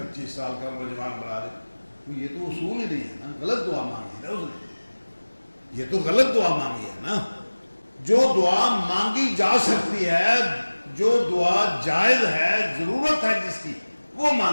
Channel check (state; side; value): inverted; both; correlation -1.00